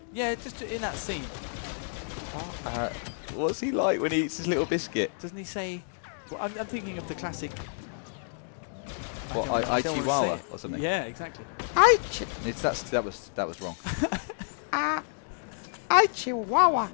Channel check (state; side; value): silent; right; digital silence